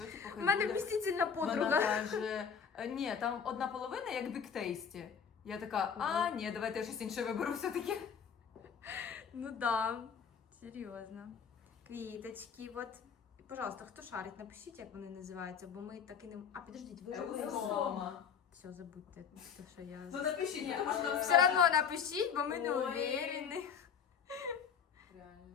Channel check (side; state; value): right; quieter; 6.9 dB